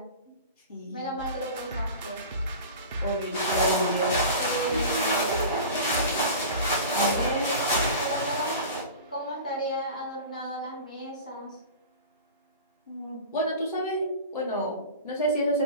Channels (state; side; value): inverted; both; correlation -0.35